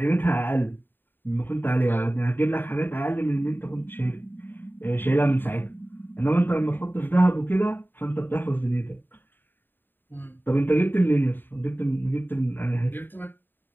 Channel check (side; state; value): right; late; 0.093 ms